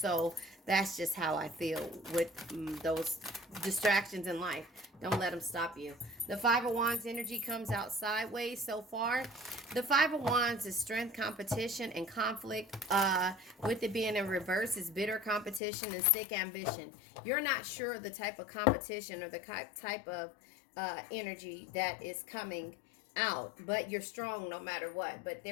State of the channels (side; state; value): right; drops out; at 15.6 s